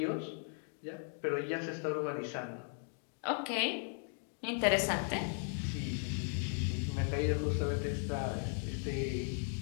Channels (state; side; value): silent; right; 53 dB below the other